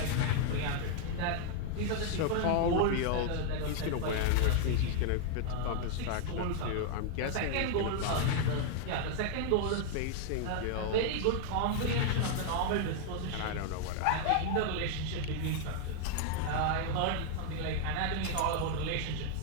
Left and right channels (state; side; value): different; both; correlation 0.00